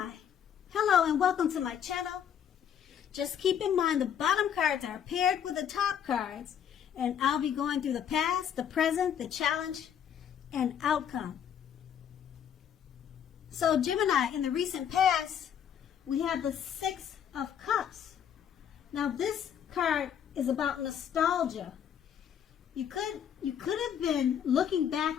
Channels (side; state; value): right; quieter; 8.9 dB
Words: hello and welcome to my channel. Just keep in mind the bottom cards are paired with the top cards, and I'll be going through the past, the present, the challenge, and outcome. So Gemini, in the recent past, we have the Six of Cups. Now this card is about nostalgia. You could have been looking back